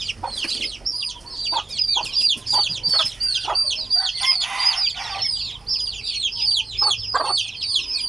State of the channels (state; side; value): quieter; left; 3.2 dB